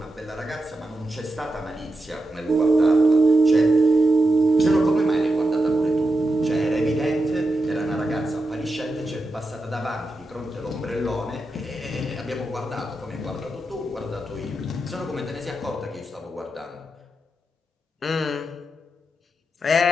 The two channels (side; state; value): both; normal; correlation 0.88